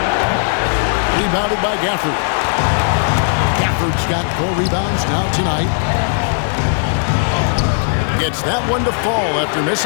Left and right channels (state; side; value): silent; right; digital silence